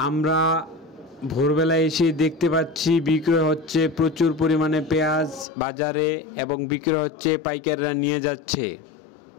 আমরা ভোরবেলা এসে দেখতে পাচ্ছি বিক্রি হচ্ছে প্রচুর পরিমাণে পেঁয়াজ বাজারে এবং বিক্রি হচ্ছে, পাইকাররা নিয়ে যাচ্ছে।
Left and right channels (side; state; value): right; drops out; at 5.5 s